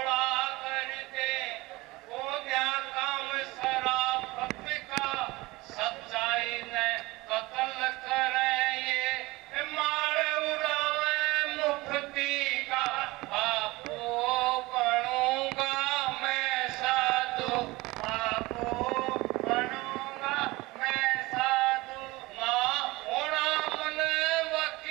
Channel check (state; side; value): quieter; left; 21.3 dB